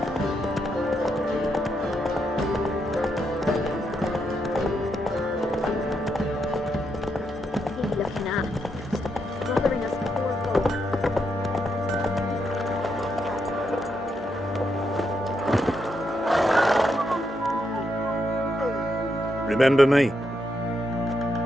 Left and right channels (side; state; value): both; normal; correlation 0.80